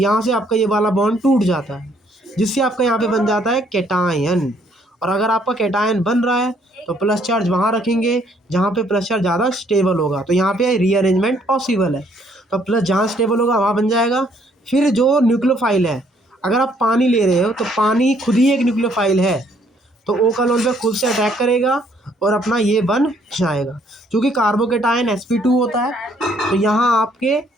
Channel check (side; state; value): both; normal; correlation 0.66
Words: से आपका ये वाला बॉन्ड टूट जाता है, जिससे आपका यहाँ पे बन जाता है कैटायन। और अगर आपका कैटायन बन रहा है तो प्लस चार्ज वहाँ रखेंगे जहाँ पे प्लस चार्ज ज़्यादा स्टेबल होगा, तो यहाँ पे रीअरेंजमेंट पॉसिबल है, तो प्लस जहाँ स्टेबल होगा वहाँ बन जाएगा। फिर जो न्यूक्लियोफाइल है, अगर आप पानी ले रहे हो तो पानी खुद ही एक न्यूक्लियोफाइल है, तो O का लोन पे खुद से अटैक करेगा और अपना ये बन जाएगा। क्योंकि कार्बोकेटायन sp2 होता है, तो यहाँ आपके